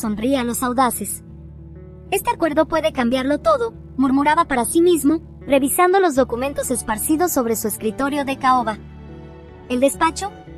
a los audaces. Este acuerdo puede cambiarlo todo, murmuraba para sí mismo, revisando los documentos esparcidos sobre su escritorio de caoba. El despacho,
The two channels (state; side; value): identical; both; correlation 1.00